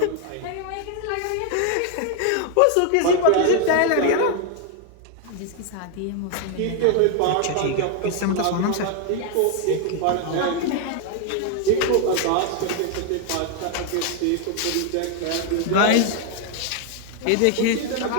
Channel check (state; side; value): different; both; correlation 0.00